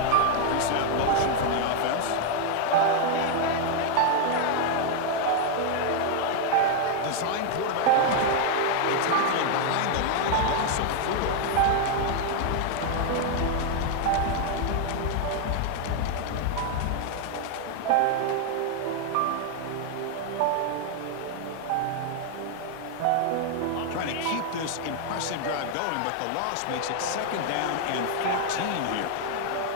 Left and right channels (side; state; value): both; different; correlation 0.00